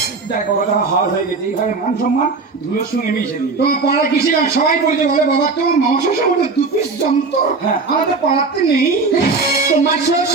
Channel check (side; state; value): left; quieter; 4.2 dB